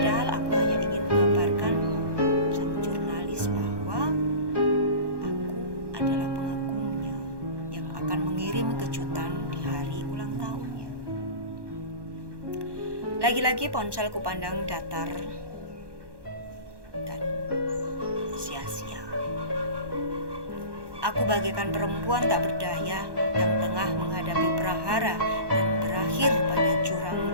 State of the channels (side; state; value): left; late; 1.2 ms